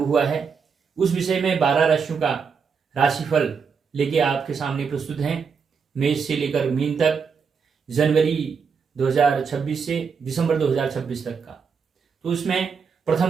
हुआ है, उस विषय में 12 राशियों का राशिफल लेके आपके सामने प्रस्तुत हैं। मेष से लेकर मीन तक, जनवरी 2026 से दिसंबर 2026 तक का। तो उसमें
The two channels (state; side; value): quieter; left; 5.9 dB